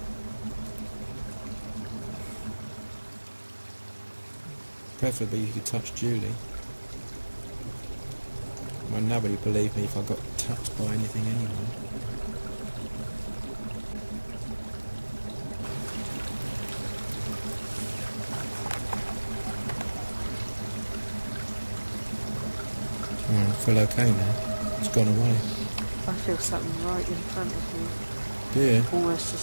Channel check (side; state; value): both; inverted; correlation -1.00